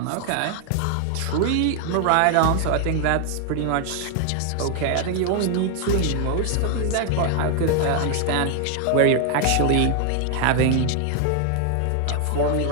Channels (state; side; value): different; both; correlation 0.00